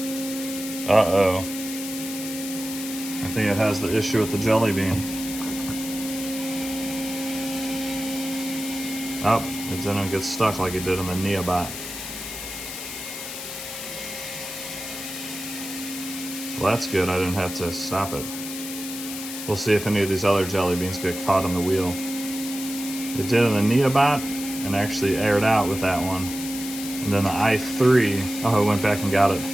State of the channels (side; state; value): left; noise; hiss, 8 dB below the sound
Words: Uh-oh. I think it has the issue with the jelly bean. Oh, it didn't get stuck like it did in the Neobot. Well, that's good. I didn't have to stop it. We'll see if any of these other jelly beans get caught on the wheel. It did in the Neobot and actually aired out with that one. And then the i3, oh, I went back and got it.